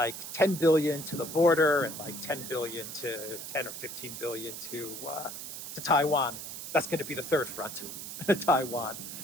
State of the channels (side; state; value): right; noise; hiss, 9 dB below the sound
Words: $10 billion to the border, and like $10 billion to 10 or 15 billion to Taiwan. That's going to be the third front, Taiwan.